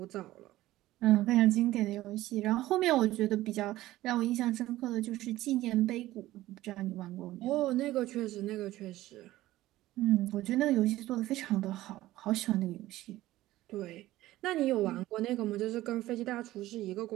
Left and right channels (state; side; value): quieter; left; 16.0 dB